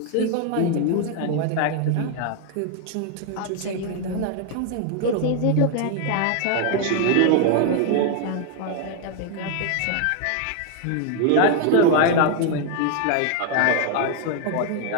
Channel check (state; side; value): different; both; correlation 0.00